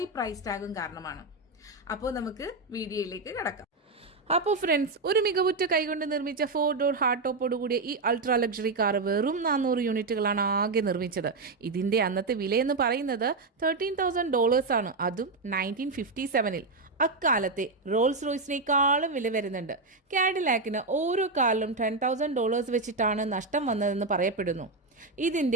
പ്രൈസ് ടാഗും കാരണമാണ്. അപ്പോൾ നമുക്ക് വീഡിയോയിലേക്ക് കടക്കാം. അപ്പോൾ ഫ്രണ്ട്സ്, ഒരു മികവുറ്റ കൈകൊണ്ട് നിർമ്മിച്ച 4 ഡോർ ഹാർഡ് ടോപ്പോടുകൂടിയ ഈ അൾട്രാ ലക്ഷറി കാർ വെറും 400 യൂണിറ്റുകളാണ് ആകെ നിർമ്മിച്ചത്. ഇതിന്റെ അന്നത്തെ വിലയെന്ന് പറയുന്നത് $13,000 ആണ്, അതും 1957. അക്കാലത്തെ റോൾസ് റോയ്സിനേക്കാളും വില വരുന്നുണ്ട്. കാഡിലാക്കിന് ഓരോ കാറിലും $10,000 വെച്ചിട്ടാണ് നഷ്ടം വന്നതെന്ന് പറയപ്പെടുന്നു.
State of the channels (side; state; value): left; quieter; 3.6 dB